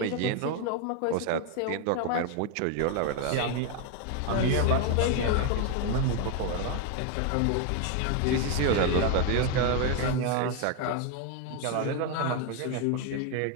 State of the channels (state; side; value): different; both; correlation 0.01